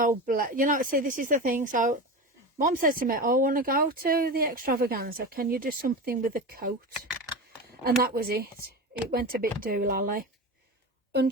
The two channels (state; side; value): normal; both; correlation 0.25